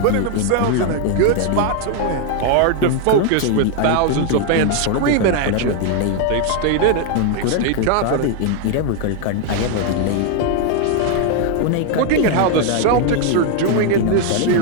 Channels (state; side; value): different; both; correlation 0.00